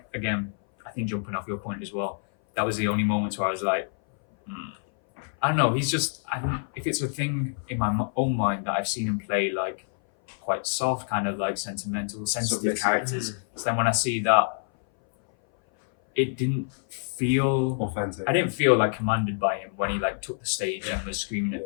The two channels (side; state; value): right; silent; 58 dB below the other